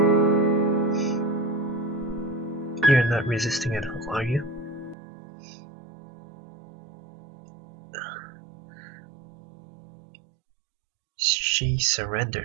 you're not resisting at all, are you? She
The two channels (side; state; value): left; drops out; at 5.0 s